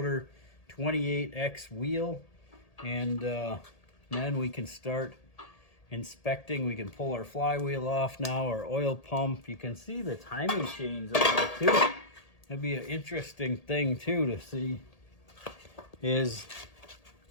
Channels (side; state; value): right; late; 1.8 ms